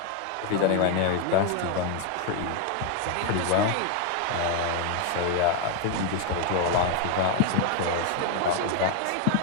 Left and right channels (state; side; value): different; both; correlation 0.01